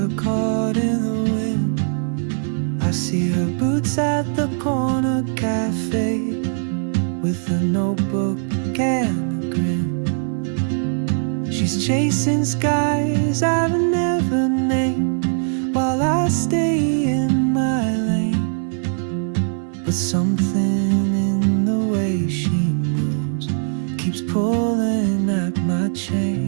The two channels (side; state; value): left; silent; 65 dB below the other